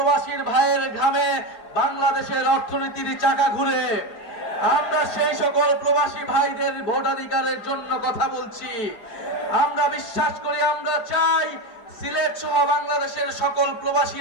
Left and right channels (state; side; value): late; right; 4.9 ms